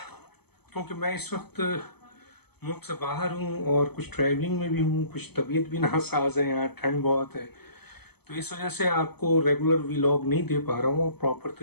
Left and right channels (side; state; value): right; late; 0.98 ms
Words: क्योंकि मैं इस वक्त मुल्क से बाहर हूँ और कुछ ट्रैवलिंग में भी हूँ, कुछ तबीयत भी नासाज है, यहाँ ठंड बहुत है, तो इस वजह से आपको रेगुलर व्लॉग नहीं दे पा रहा हूँ और प्रॉपर